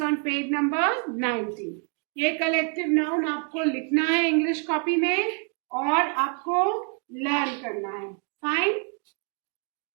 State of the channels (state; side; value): quieter; left; 39.6 dB